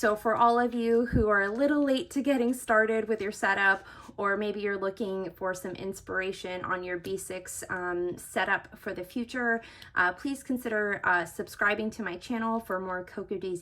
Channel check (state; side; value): identical; both; correlation 1.00